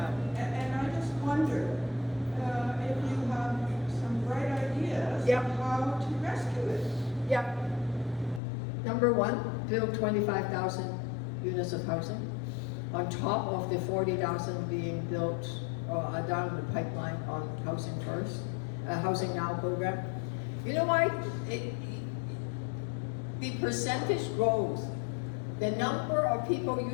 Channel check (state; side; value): drops out; right; at 8.4 s